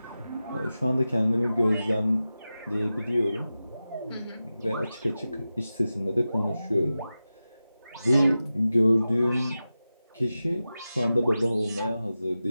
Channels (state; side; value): inverted; both; correlation -0.94